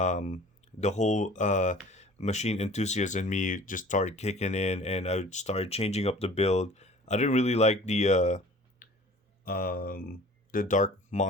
whole machine enthusiast in me just started kicking in, and I started changing up the build. I didn't really like the dark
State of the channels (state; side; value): normal; both; correlation 0.46